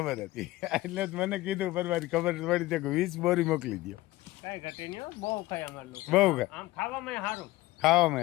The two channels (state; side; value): quieter; right; 18.2 dB